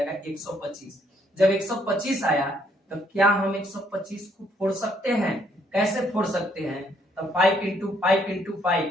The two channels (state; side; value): normal; both; correlation 0.69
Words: 125। जब 125 आया तो क्या हम 125 को फोड़ सकते हैं, कैसे फोड़ सकते हैं, तो 5 इंटू 5 इंटू 5